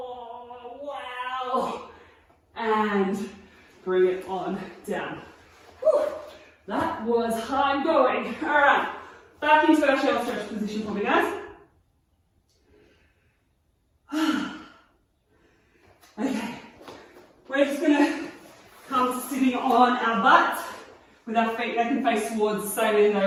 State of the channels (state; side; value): identical; both; correlation 1.00